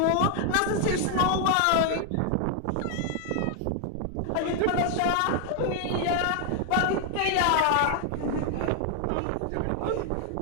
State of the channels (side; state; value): both; different; correlation 0.00